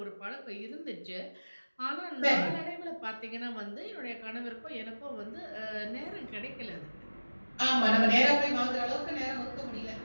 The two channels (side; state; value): both; inverted; correlation -1.00